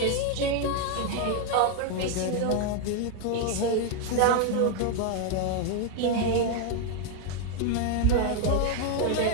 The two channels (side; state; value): both; different; correlation 0.01